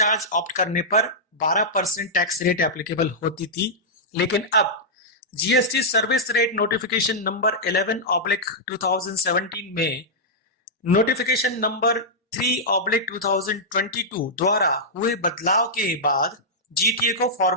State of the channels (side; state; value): both; normal; correlation -0.10